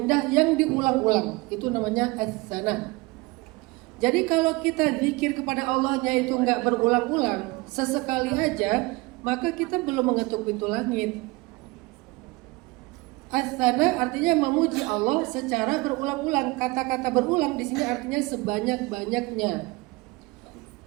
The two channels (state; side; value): quieter; left; 23.9 dB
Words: yang diulang-ulang. Itu namanya as-sana. Jadi kalau kita zikir kepada Allahnya itu nggak berulang-ulang, sesekali aja, maka kita belum mengetuk pintu langit. As-sana artinya memuji Allah secara berulang-ulang. Kata-kata berulang di sini artinya sebanyak-banyaknya.